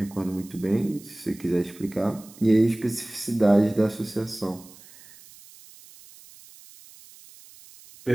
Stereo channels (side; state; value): right; noise; hiss, 22 dB below the sound